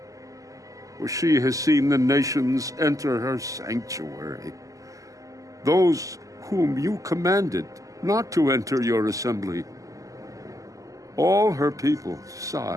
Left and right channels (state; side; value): late; left; 0.16 ms